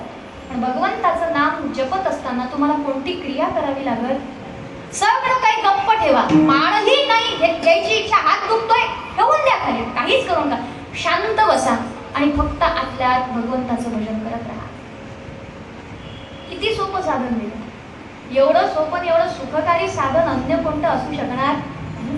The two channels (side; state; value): both; identical; correlation 1.00